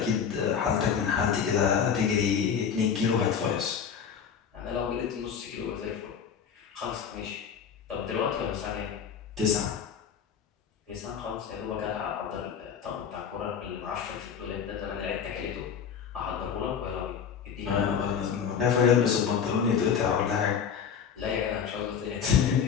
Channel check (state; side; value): quieter; right; 7.3 dB